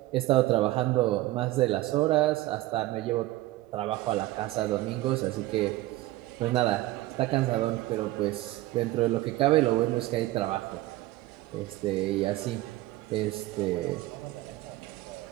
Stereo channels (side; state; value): left; quieter; 17.2 dB